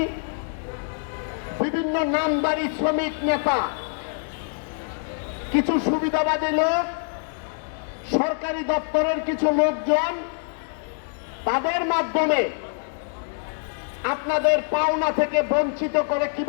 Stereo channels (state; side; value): silent; right; digital silence